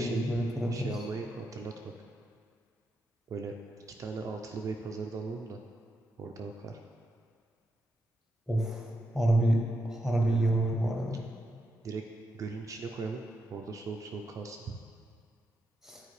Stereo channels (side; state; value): both; normal; correlation 0.84